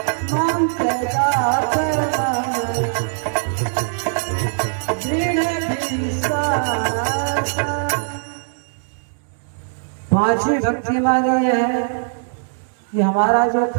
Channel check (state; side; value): silent; left; digital silence